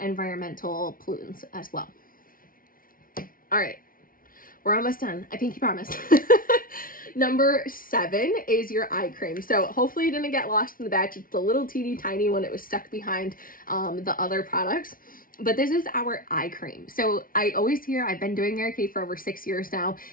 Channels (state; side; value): late; right; 0.41 ms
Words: environmental pollutants as well. All right, we're almost done. I pinky promise. Number 7 is your eye cream. So hopefully it didn't get lost in the batch. It's the little teeny tiny one. It was stuck behind the other products. But this is our eye cream. So I always hear, I've been doing Mary Kay for over 6 years now,